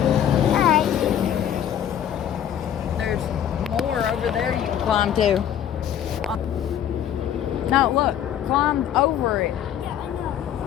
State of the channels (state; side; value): quieter; right; 9.9 dB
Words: Alright. There's more over there you can climb to. No, look, climb over it. Yeah, I know.